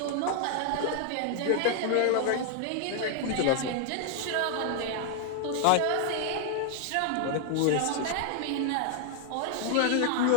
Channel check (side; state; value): both; different; correlation 0.00